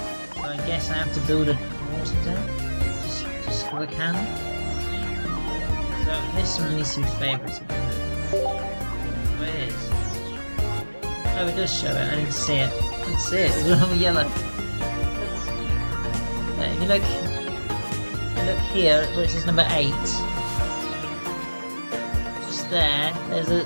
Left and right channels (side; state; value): both; inverted; correlation -1.00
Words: So I guess I have to build a water deck just for the can. So this one needs to be favourites. Oh, it is. Oh, it does show it. I didn't see it. I didn't see it. It's all yellow. If you look here, where it says number 8. Just there.